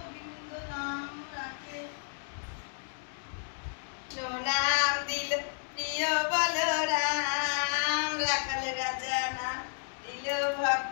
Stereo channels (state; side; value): silent; right; digital silence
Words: নাম রাখে। নাম দিল প্রিয় বলরাম, রাখাল রাজা নাম দিল